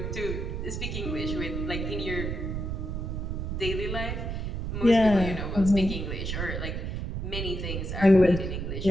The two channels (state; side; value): noise; right; rumble, 3 dB below the sound